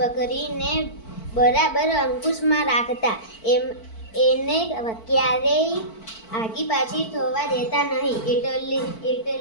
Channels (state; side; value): late; right; 4.5 ms